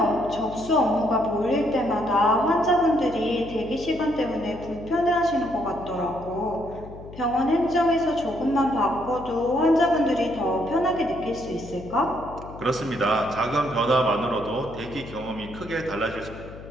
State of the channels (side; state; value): left; noise; hum, 15 dB below the sound